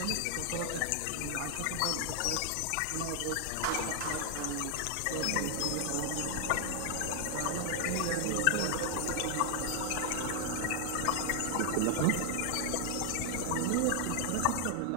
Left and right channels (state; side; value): different; both; correlation 0.00